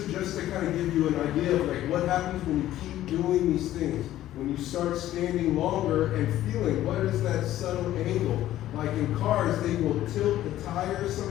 just to kind of give you an idea of like what happens when you keep doing these things. When you start standing longer and feeling what is that subtle angle. Like in cars, they will tilt the tires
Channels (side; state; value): right; quieter; 13.6 dB